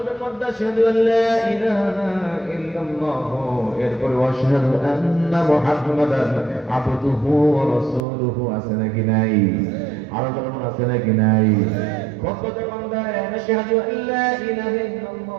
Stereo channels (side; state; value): left; drops out; at 8.0 s